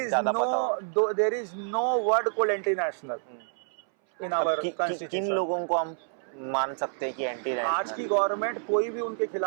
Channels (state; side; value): silent; left; 59 dB below the other